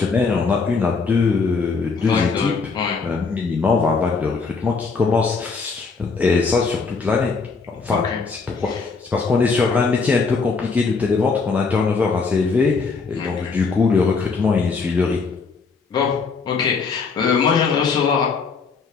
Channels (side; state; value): right; quieter; 4.8 dB